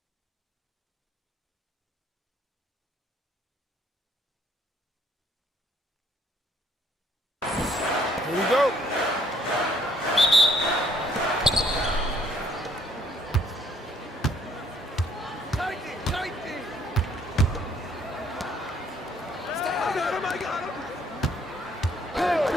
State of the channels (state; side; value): normal; both; correlation 0.63